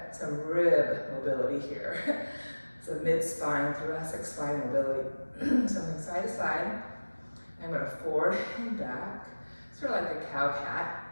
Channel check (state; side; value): inverted; both; correlation -1.00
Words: some rib mobility here. So mid-spine, thoracic spine mobility. Something side to side. I'm going to forward and back, sort of like a cow cat